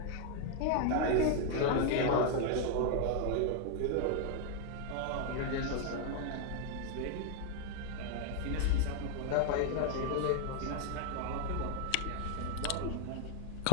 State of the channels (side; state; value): both; different; correlation 0.00